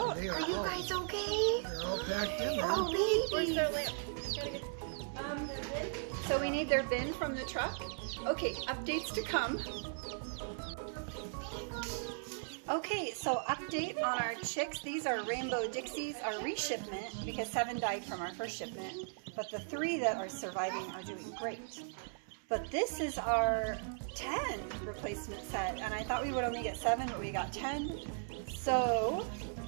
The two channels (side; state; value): left; silent; 53 dB below the other